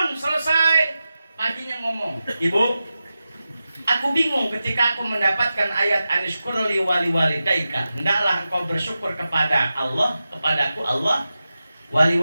selesai paginya ngomong, Ibu, aku bingung ketika aku mendapatkan ayat anishkurli wali walidaika. Hendaklah engkau bersyukur kepada Allah, kepadaku Allah, wali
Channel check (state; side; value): inverted; both; correlation -0.93